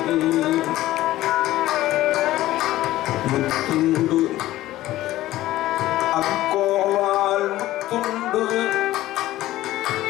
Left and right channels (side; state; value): right; quieter; 15.5 dB